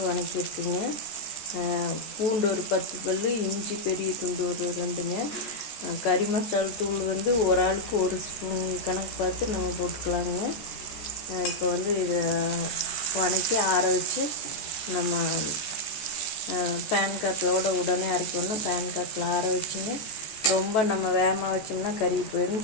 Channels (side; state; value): right; late; 14 ms